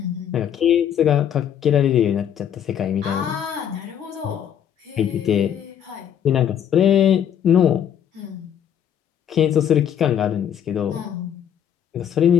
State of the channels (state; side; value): quieter; right; 9.3 dB